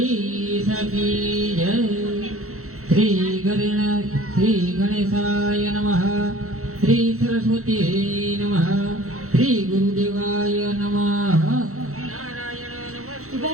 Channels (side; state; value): left; late; 0.63 ms